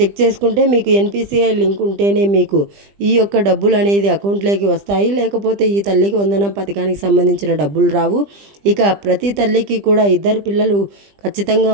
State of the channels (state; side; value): late; left; 20 ms